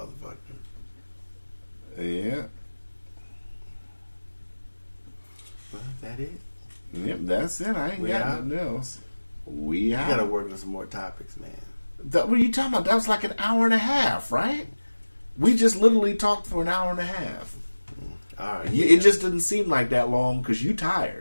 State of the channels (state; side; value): inverted; both; correlation -1.00